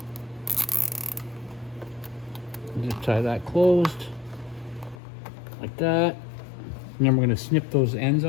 Zip tie that closed, like that. And then we're gonna snip those ends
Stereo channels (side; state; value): right; drops out; at 5.0 s